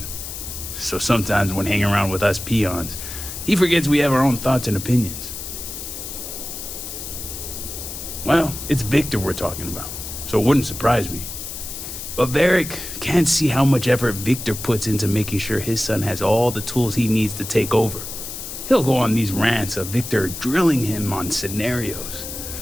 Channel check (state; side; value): noise; left; hiss, 8 dB below the sound